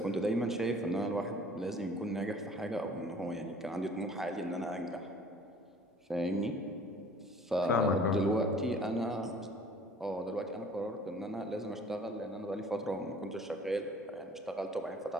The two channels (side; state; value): both; normal; correlation 0.51